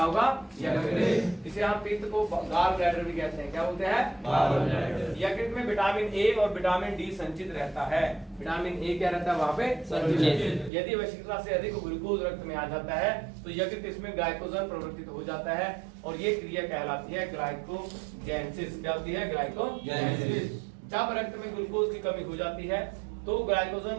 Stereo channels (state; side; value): drops out; left; at 10.7 s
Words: होगा? यकृत। इसे हम पित्त को गाल ब्लैडर भी कहते हैं। क्या बोलते हैं? यकृत में विटामिन ए और विटामिन डी संचित रहता है। विटामिन ए क्या रहता है वहाँ पे? संचित। यदि आवश्यकता से अधिक ग्लूकोज रक्त में आ जाता है तो यकृत इसमें ग्लाइकोजन प्रवर्तित हो जाता है और ये क्रिया कहलाती है ग्लाइकोजेनेसिस। क्या होती है? ग्लाइकोजेनेसिस। जब रक्त में ग्लूकोज की कमी हो जाती है तो ग्लाइकोजन